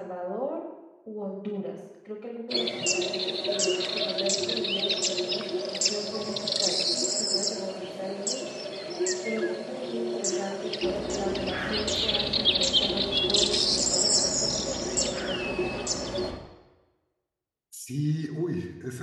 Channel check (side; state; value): both; identical; correlation 1.00